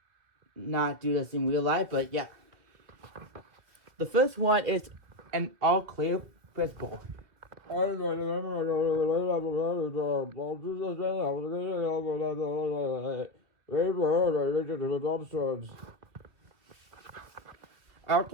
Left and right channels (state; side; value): late; left; 2.8 ms